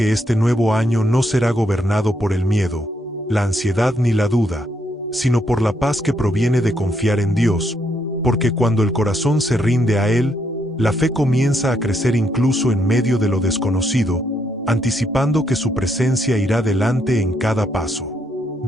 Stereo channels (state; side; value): normal; both; correlation 0.75